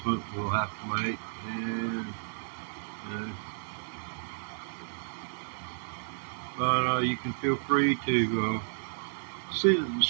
we'll have to make, and but you can feel free to see the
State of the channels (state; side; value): silent; left; digital silence